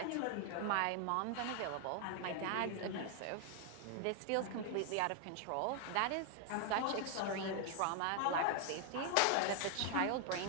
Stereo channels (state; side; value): different; both; correlation 0.00